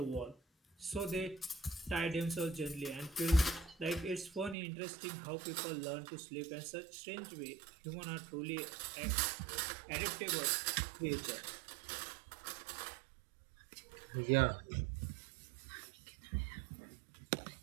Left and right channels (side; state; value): left; drops out; at 4.5 s